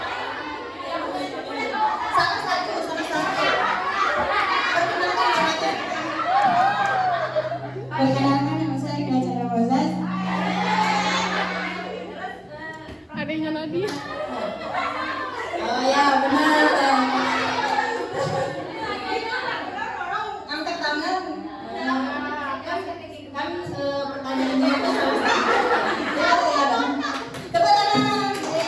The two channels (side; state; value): both; identical; correlation 1.00